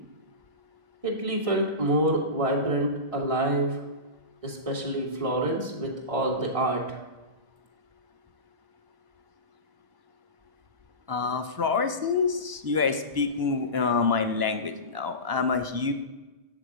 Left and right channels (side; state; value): left; late; 1.1 ms